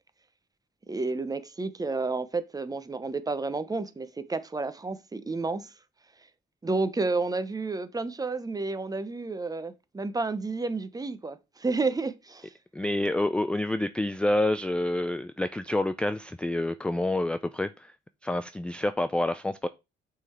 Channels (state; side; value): normal; both; correlation 0.85